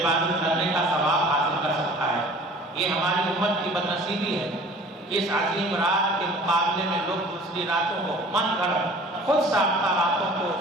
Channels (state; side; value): normal; both; correlation 0.47